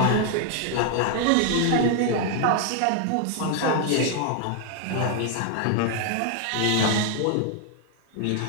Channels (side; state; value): both; different; correlation 0.00